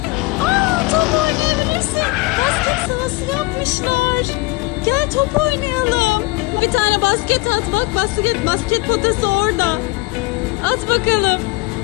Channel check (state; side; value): quieter; right; 22.4 dB